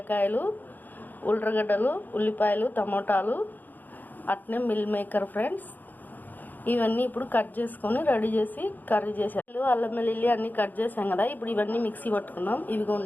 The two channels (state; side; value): late; right; 0.085 ms